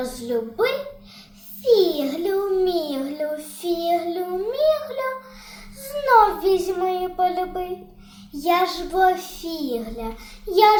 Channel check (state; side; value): identical; both; correlation 1.00